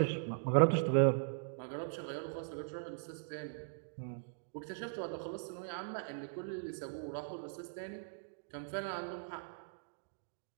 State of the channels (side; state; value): left; silent; digital silence